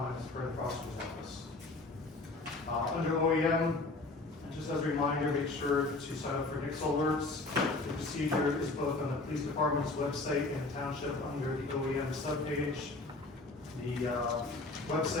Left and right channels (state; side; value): quieter; right; 3.2 dB